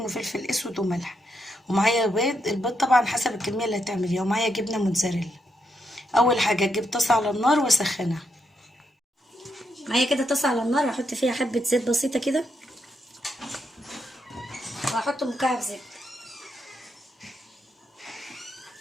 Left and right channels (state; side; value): normal; both; correlation 0.80